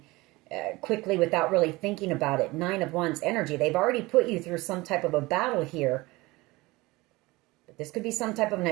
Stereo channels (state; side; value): quieter; left; 21.5 dB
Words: quickly without really thinking about it. Nine of Wands energy. They've already put you through some type of a battle here. But this could be some type of an